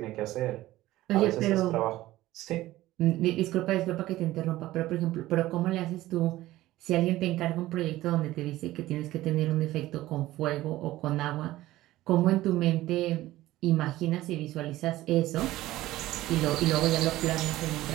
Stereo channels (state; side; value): quieter; left; 16.2 dB